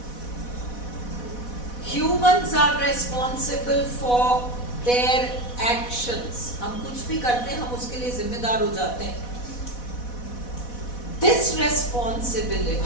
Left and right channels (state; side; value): late; right; 4.1 ms